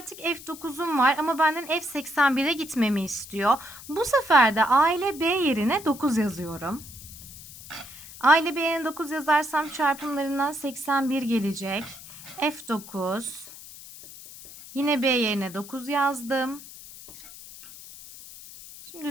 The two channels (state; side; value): noise; left; hiss, 16 dB below the sound